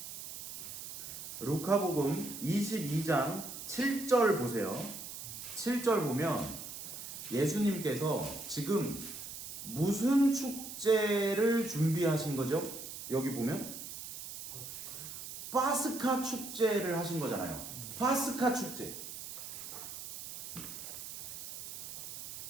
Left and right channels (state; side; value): noise; right; hiss, 9 dB below the sound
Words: 루카복음 22장 7절 보세요. 7절 보면 예수님께서 지금 무슨 축제를 준비하신 거죠? 여기 보면 파스카 축제를 하신 거잖아요. 파스카 축제.